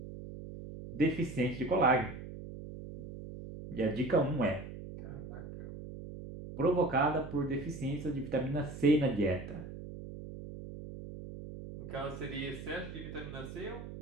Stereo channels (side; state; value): right; noise; hum, 11 dB below the sound